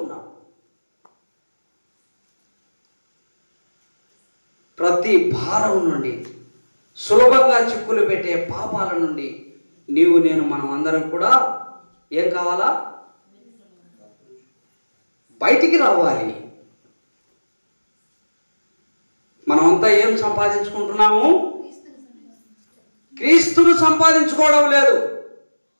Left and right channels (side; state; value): both; inverted; correlation -1.00